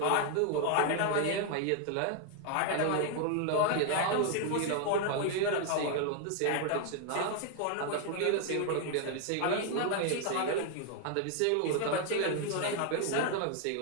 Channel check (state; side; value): different; both; correlation 0.00